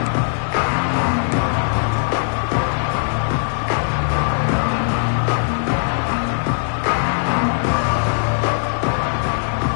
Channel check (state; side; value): silent; right; digital silence